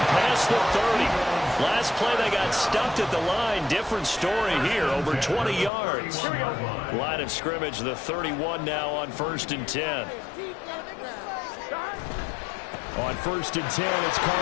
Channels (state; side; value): drops out; right; at 5.7 s